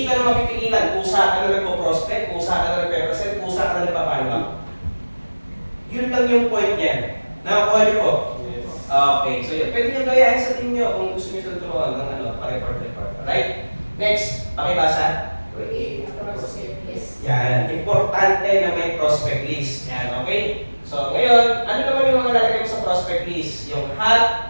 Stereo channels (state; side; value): inverted; both; correlation -1.00